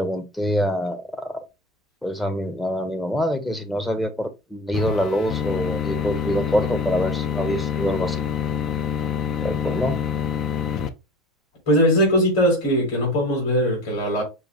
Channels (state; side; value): normal; both; correlation 0.36